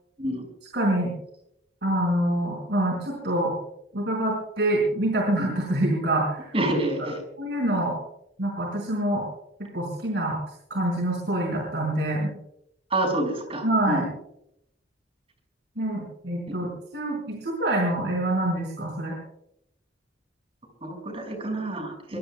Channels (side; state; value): both; normal; correlation 0.39